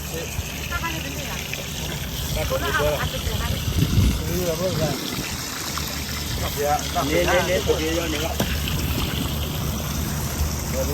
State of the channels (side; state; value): both; identical; correlation 1.00